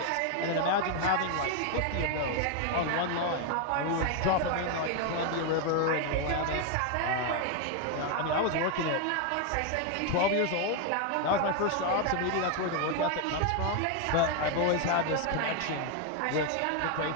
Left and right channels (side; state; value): both; different; correlation 0.01